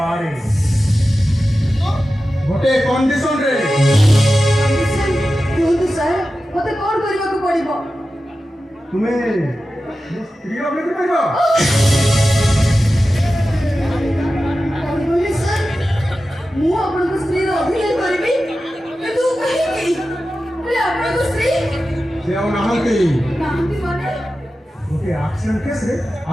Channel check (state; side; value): normal; both; correlation 0.93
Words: ଗୋଟେ କଣ୍ଡିସନରେ କୁହନ୍ତୁ ସାର୍ ମତେ କଣ କରିବାକୁ ପଡିବ? ତୁମେ ମୋ ସ୍ତ୍ରୀର ଅଭିନୟ କରିବ। କଣ କହିଲେ ସାର୍? ମୁଁ ଆପଣଙ୍କ ସ୍ତ୍ରୀର ଅଭିନୟ କରିବି କିନ୍ତୁ କାହିଁକି? ହେଲେ ଆପଣଙ୍କ ସ୍ତ୍ରୀ ସେ ଆଉ ନାହାନ୍ତି। କାହିଁକି ମାନେ? ଗୋଟେ ଆକ୍ସିଡେଣ୍ଟ କେସରେ